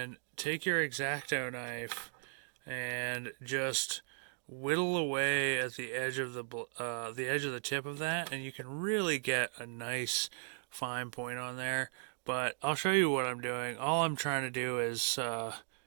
take your X-Acto knife and just whittle away at the edge of the tip of that, and you can really get a nice fine point on there. But I'll show you what I'm doing. All I'm trying to do is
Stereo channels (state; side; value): silent; left; digital silence